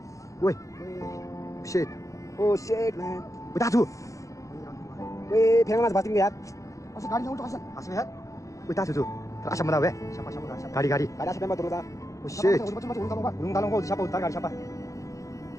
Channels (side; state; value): right; late; 0.16 ms